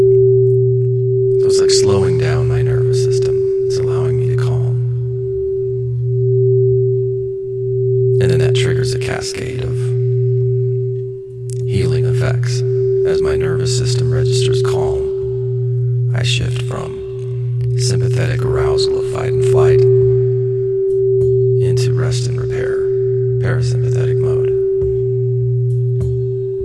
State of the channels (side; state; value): both; identical; correlation 1.00